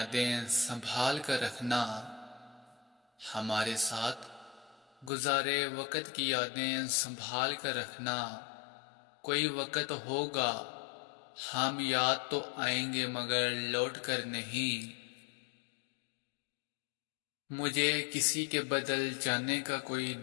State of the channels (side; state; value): right; drops out; at 5.1 s